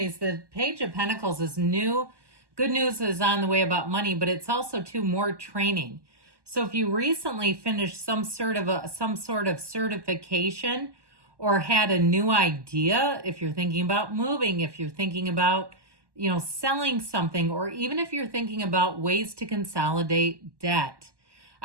The Page of Pentacles is new. Good news is on the way about money, but it's also more training. So if you recently finished some sort of certification or had a new idea, if you're thinking about moving, if you're thinking about selling something, or even if you're thinking about ways to consolidate debt,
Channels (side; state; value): left; late; 1.1 ms